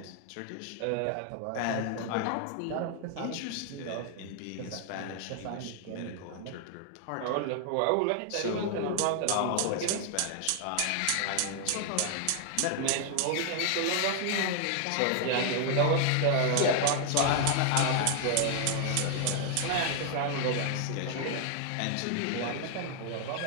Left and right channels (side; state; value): both; different; correlation 0.00